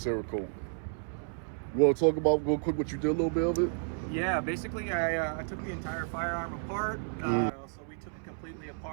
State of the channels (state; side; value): silent; left; 57 dB below the other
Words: You want to talk about real quick what you did, a little bit of it? Yeah, basically I took the entire firearm apart. So we took it completely